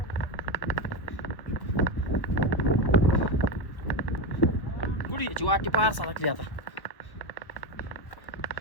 कुठे याची वाटी पार सारखली आता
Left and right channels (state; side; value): late; right; 1.4 ms